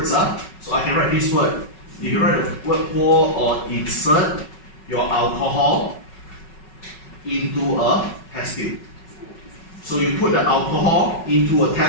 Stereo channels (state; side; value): late; right; 5.4 ms